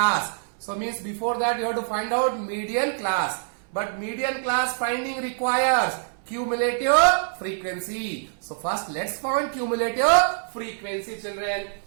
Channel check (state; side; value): silent; left; 62 dB below the other